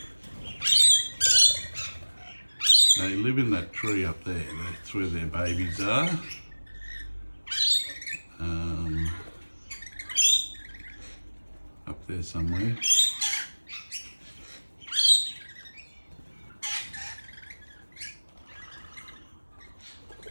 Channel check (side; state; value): both; inverted; correlation -1.00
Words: They live in that tree up there. That's where their babies are. Up there somewhere.